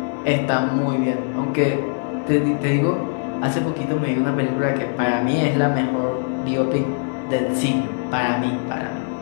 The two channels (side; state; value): right; silent; digital silence